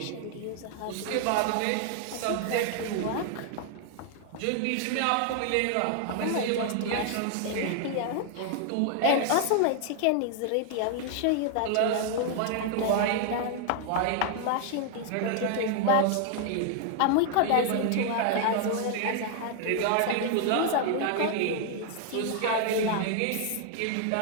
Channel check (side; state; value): both; different; correlation 0.00